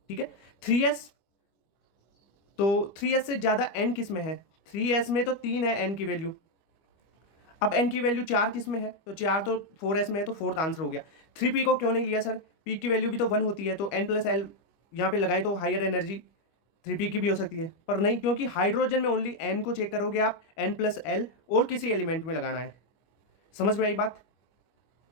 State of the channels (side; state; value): right; late; 25 ms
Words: ठीक है, 3s, तो 3s से ज्यादा n किस में है, 3s में तो 3 है n की वैल्यू, अब n की वैल्यू 4 किस में है, तो 4 तो 4s में है, तो फोर्थ आंसर हो गया। 3p को क्यों नहीं लिया सर, p की वैल्यू भी तो 1 होती है, तो n+L यहाँ पे लगाएं तो हायर एनर्जी 3p की भी हो सकती है, पर नहीं, क्योंकि हाइड्रोजन में ओनली n को चेक करोगे आप, n+L और किसी एलिमेंट में लगाना है। समझ में आई बात,